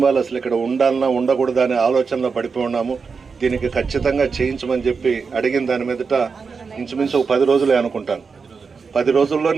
అసలు ఇక్కడ ఉండాలన్నా ఉండకూడదా అనే ఆలోచనలో పడిపోయి ఉన్నాము, దీనికి ఖచ్చితంగా చేయించమని చెప్పి అడిగిన దాని మీదట ఇంచుమించు 10 రోజులే అనుకుంటాను. 10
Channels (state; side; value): quieter; left; 5.2 dB